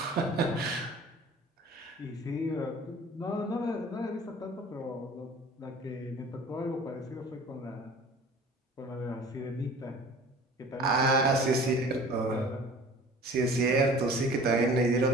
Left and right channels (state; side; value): normal; both; correlation 0.45